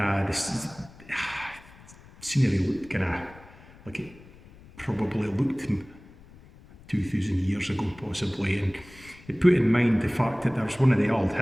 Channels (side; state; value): left; noise; rumble, 22 dB below the sound